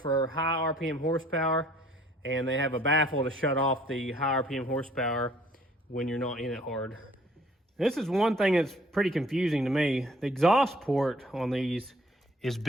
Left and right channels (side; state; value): both; normal; correlation 0.59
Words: high RPM horsepower, and they have a baffle to shut off the high RPM horsepower when you're not in it hard. This is one thing that's pretty confusing to me. The exhaust port on these is